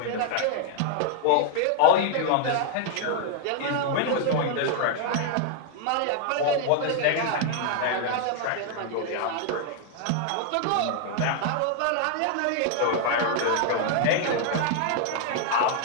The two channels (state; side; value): different; both; correlation 0.00